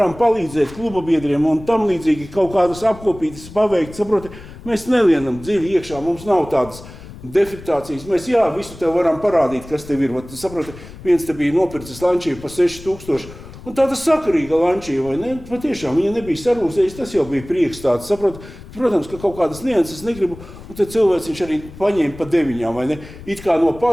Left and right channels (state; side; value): noise; left; rumble, 17 dB below the sound